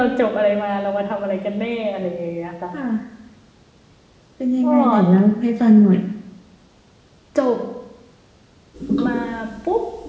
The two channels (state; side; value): identical; both; correlation 1.00